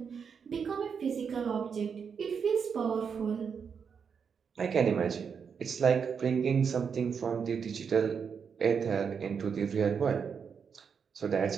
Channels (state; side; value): quieter; left; 6.5 dB